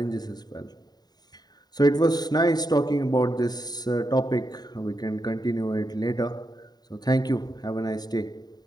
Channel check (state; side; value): late; right; 0.20 ms